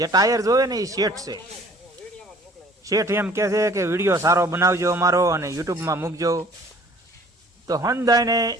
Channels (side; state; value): both; normal; correlation 0.53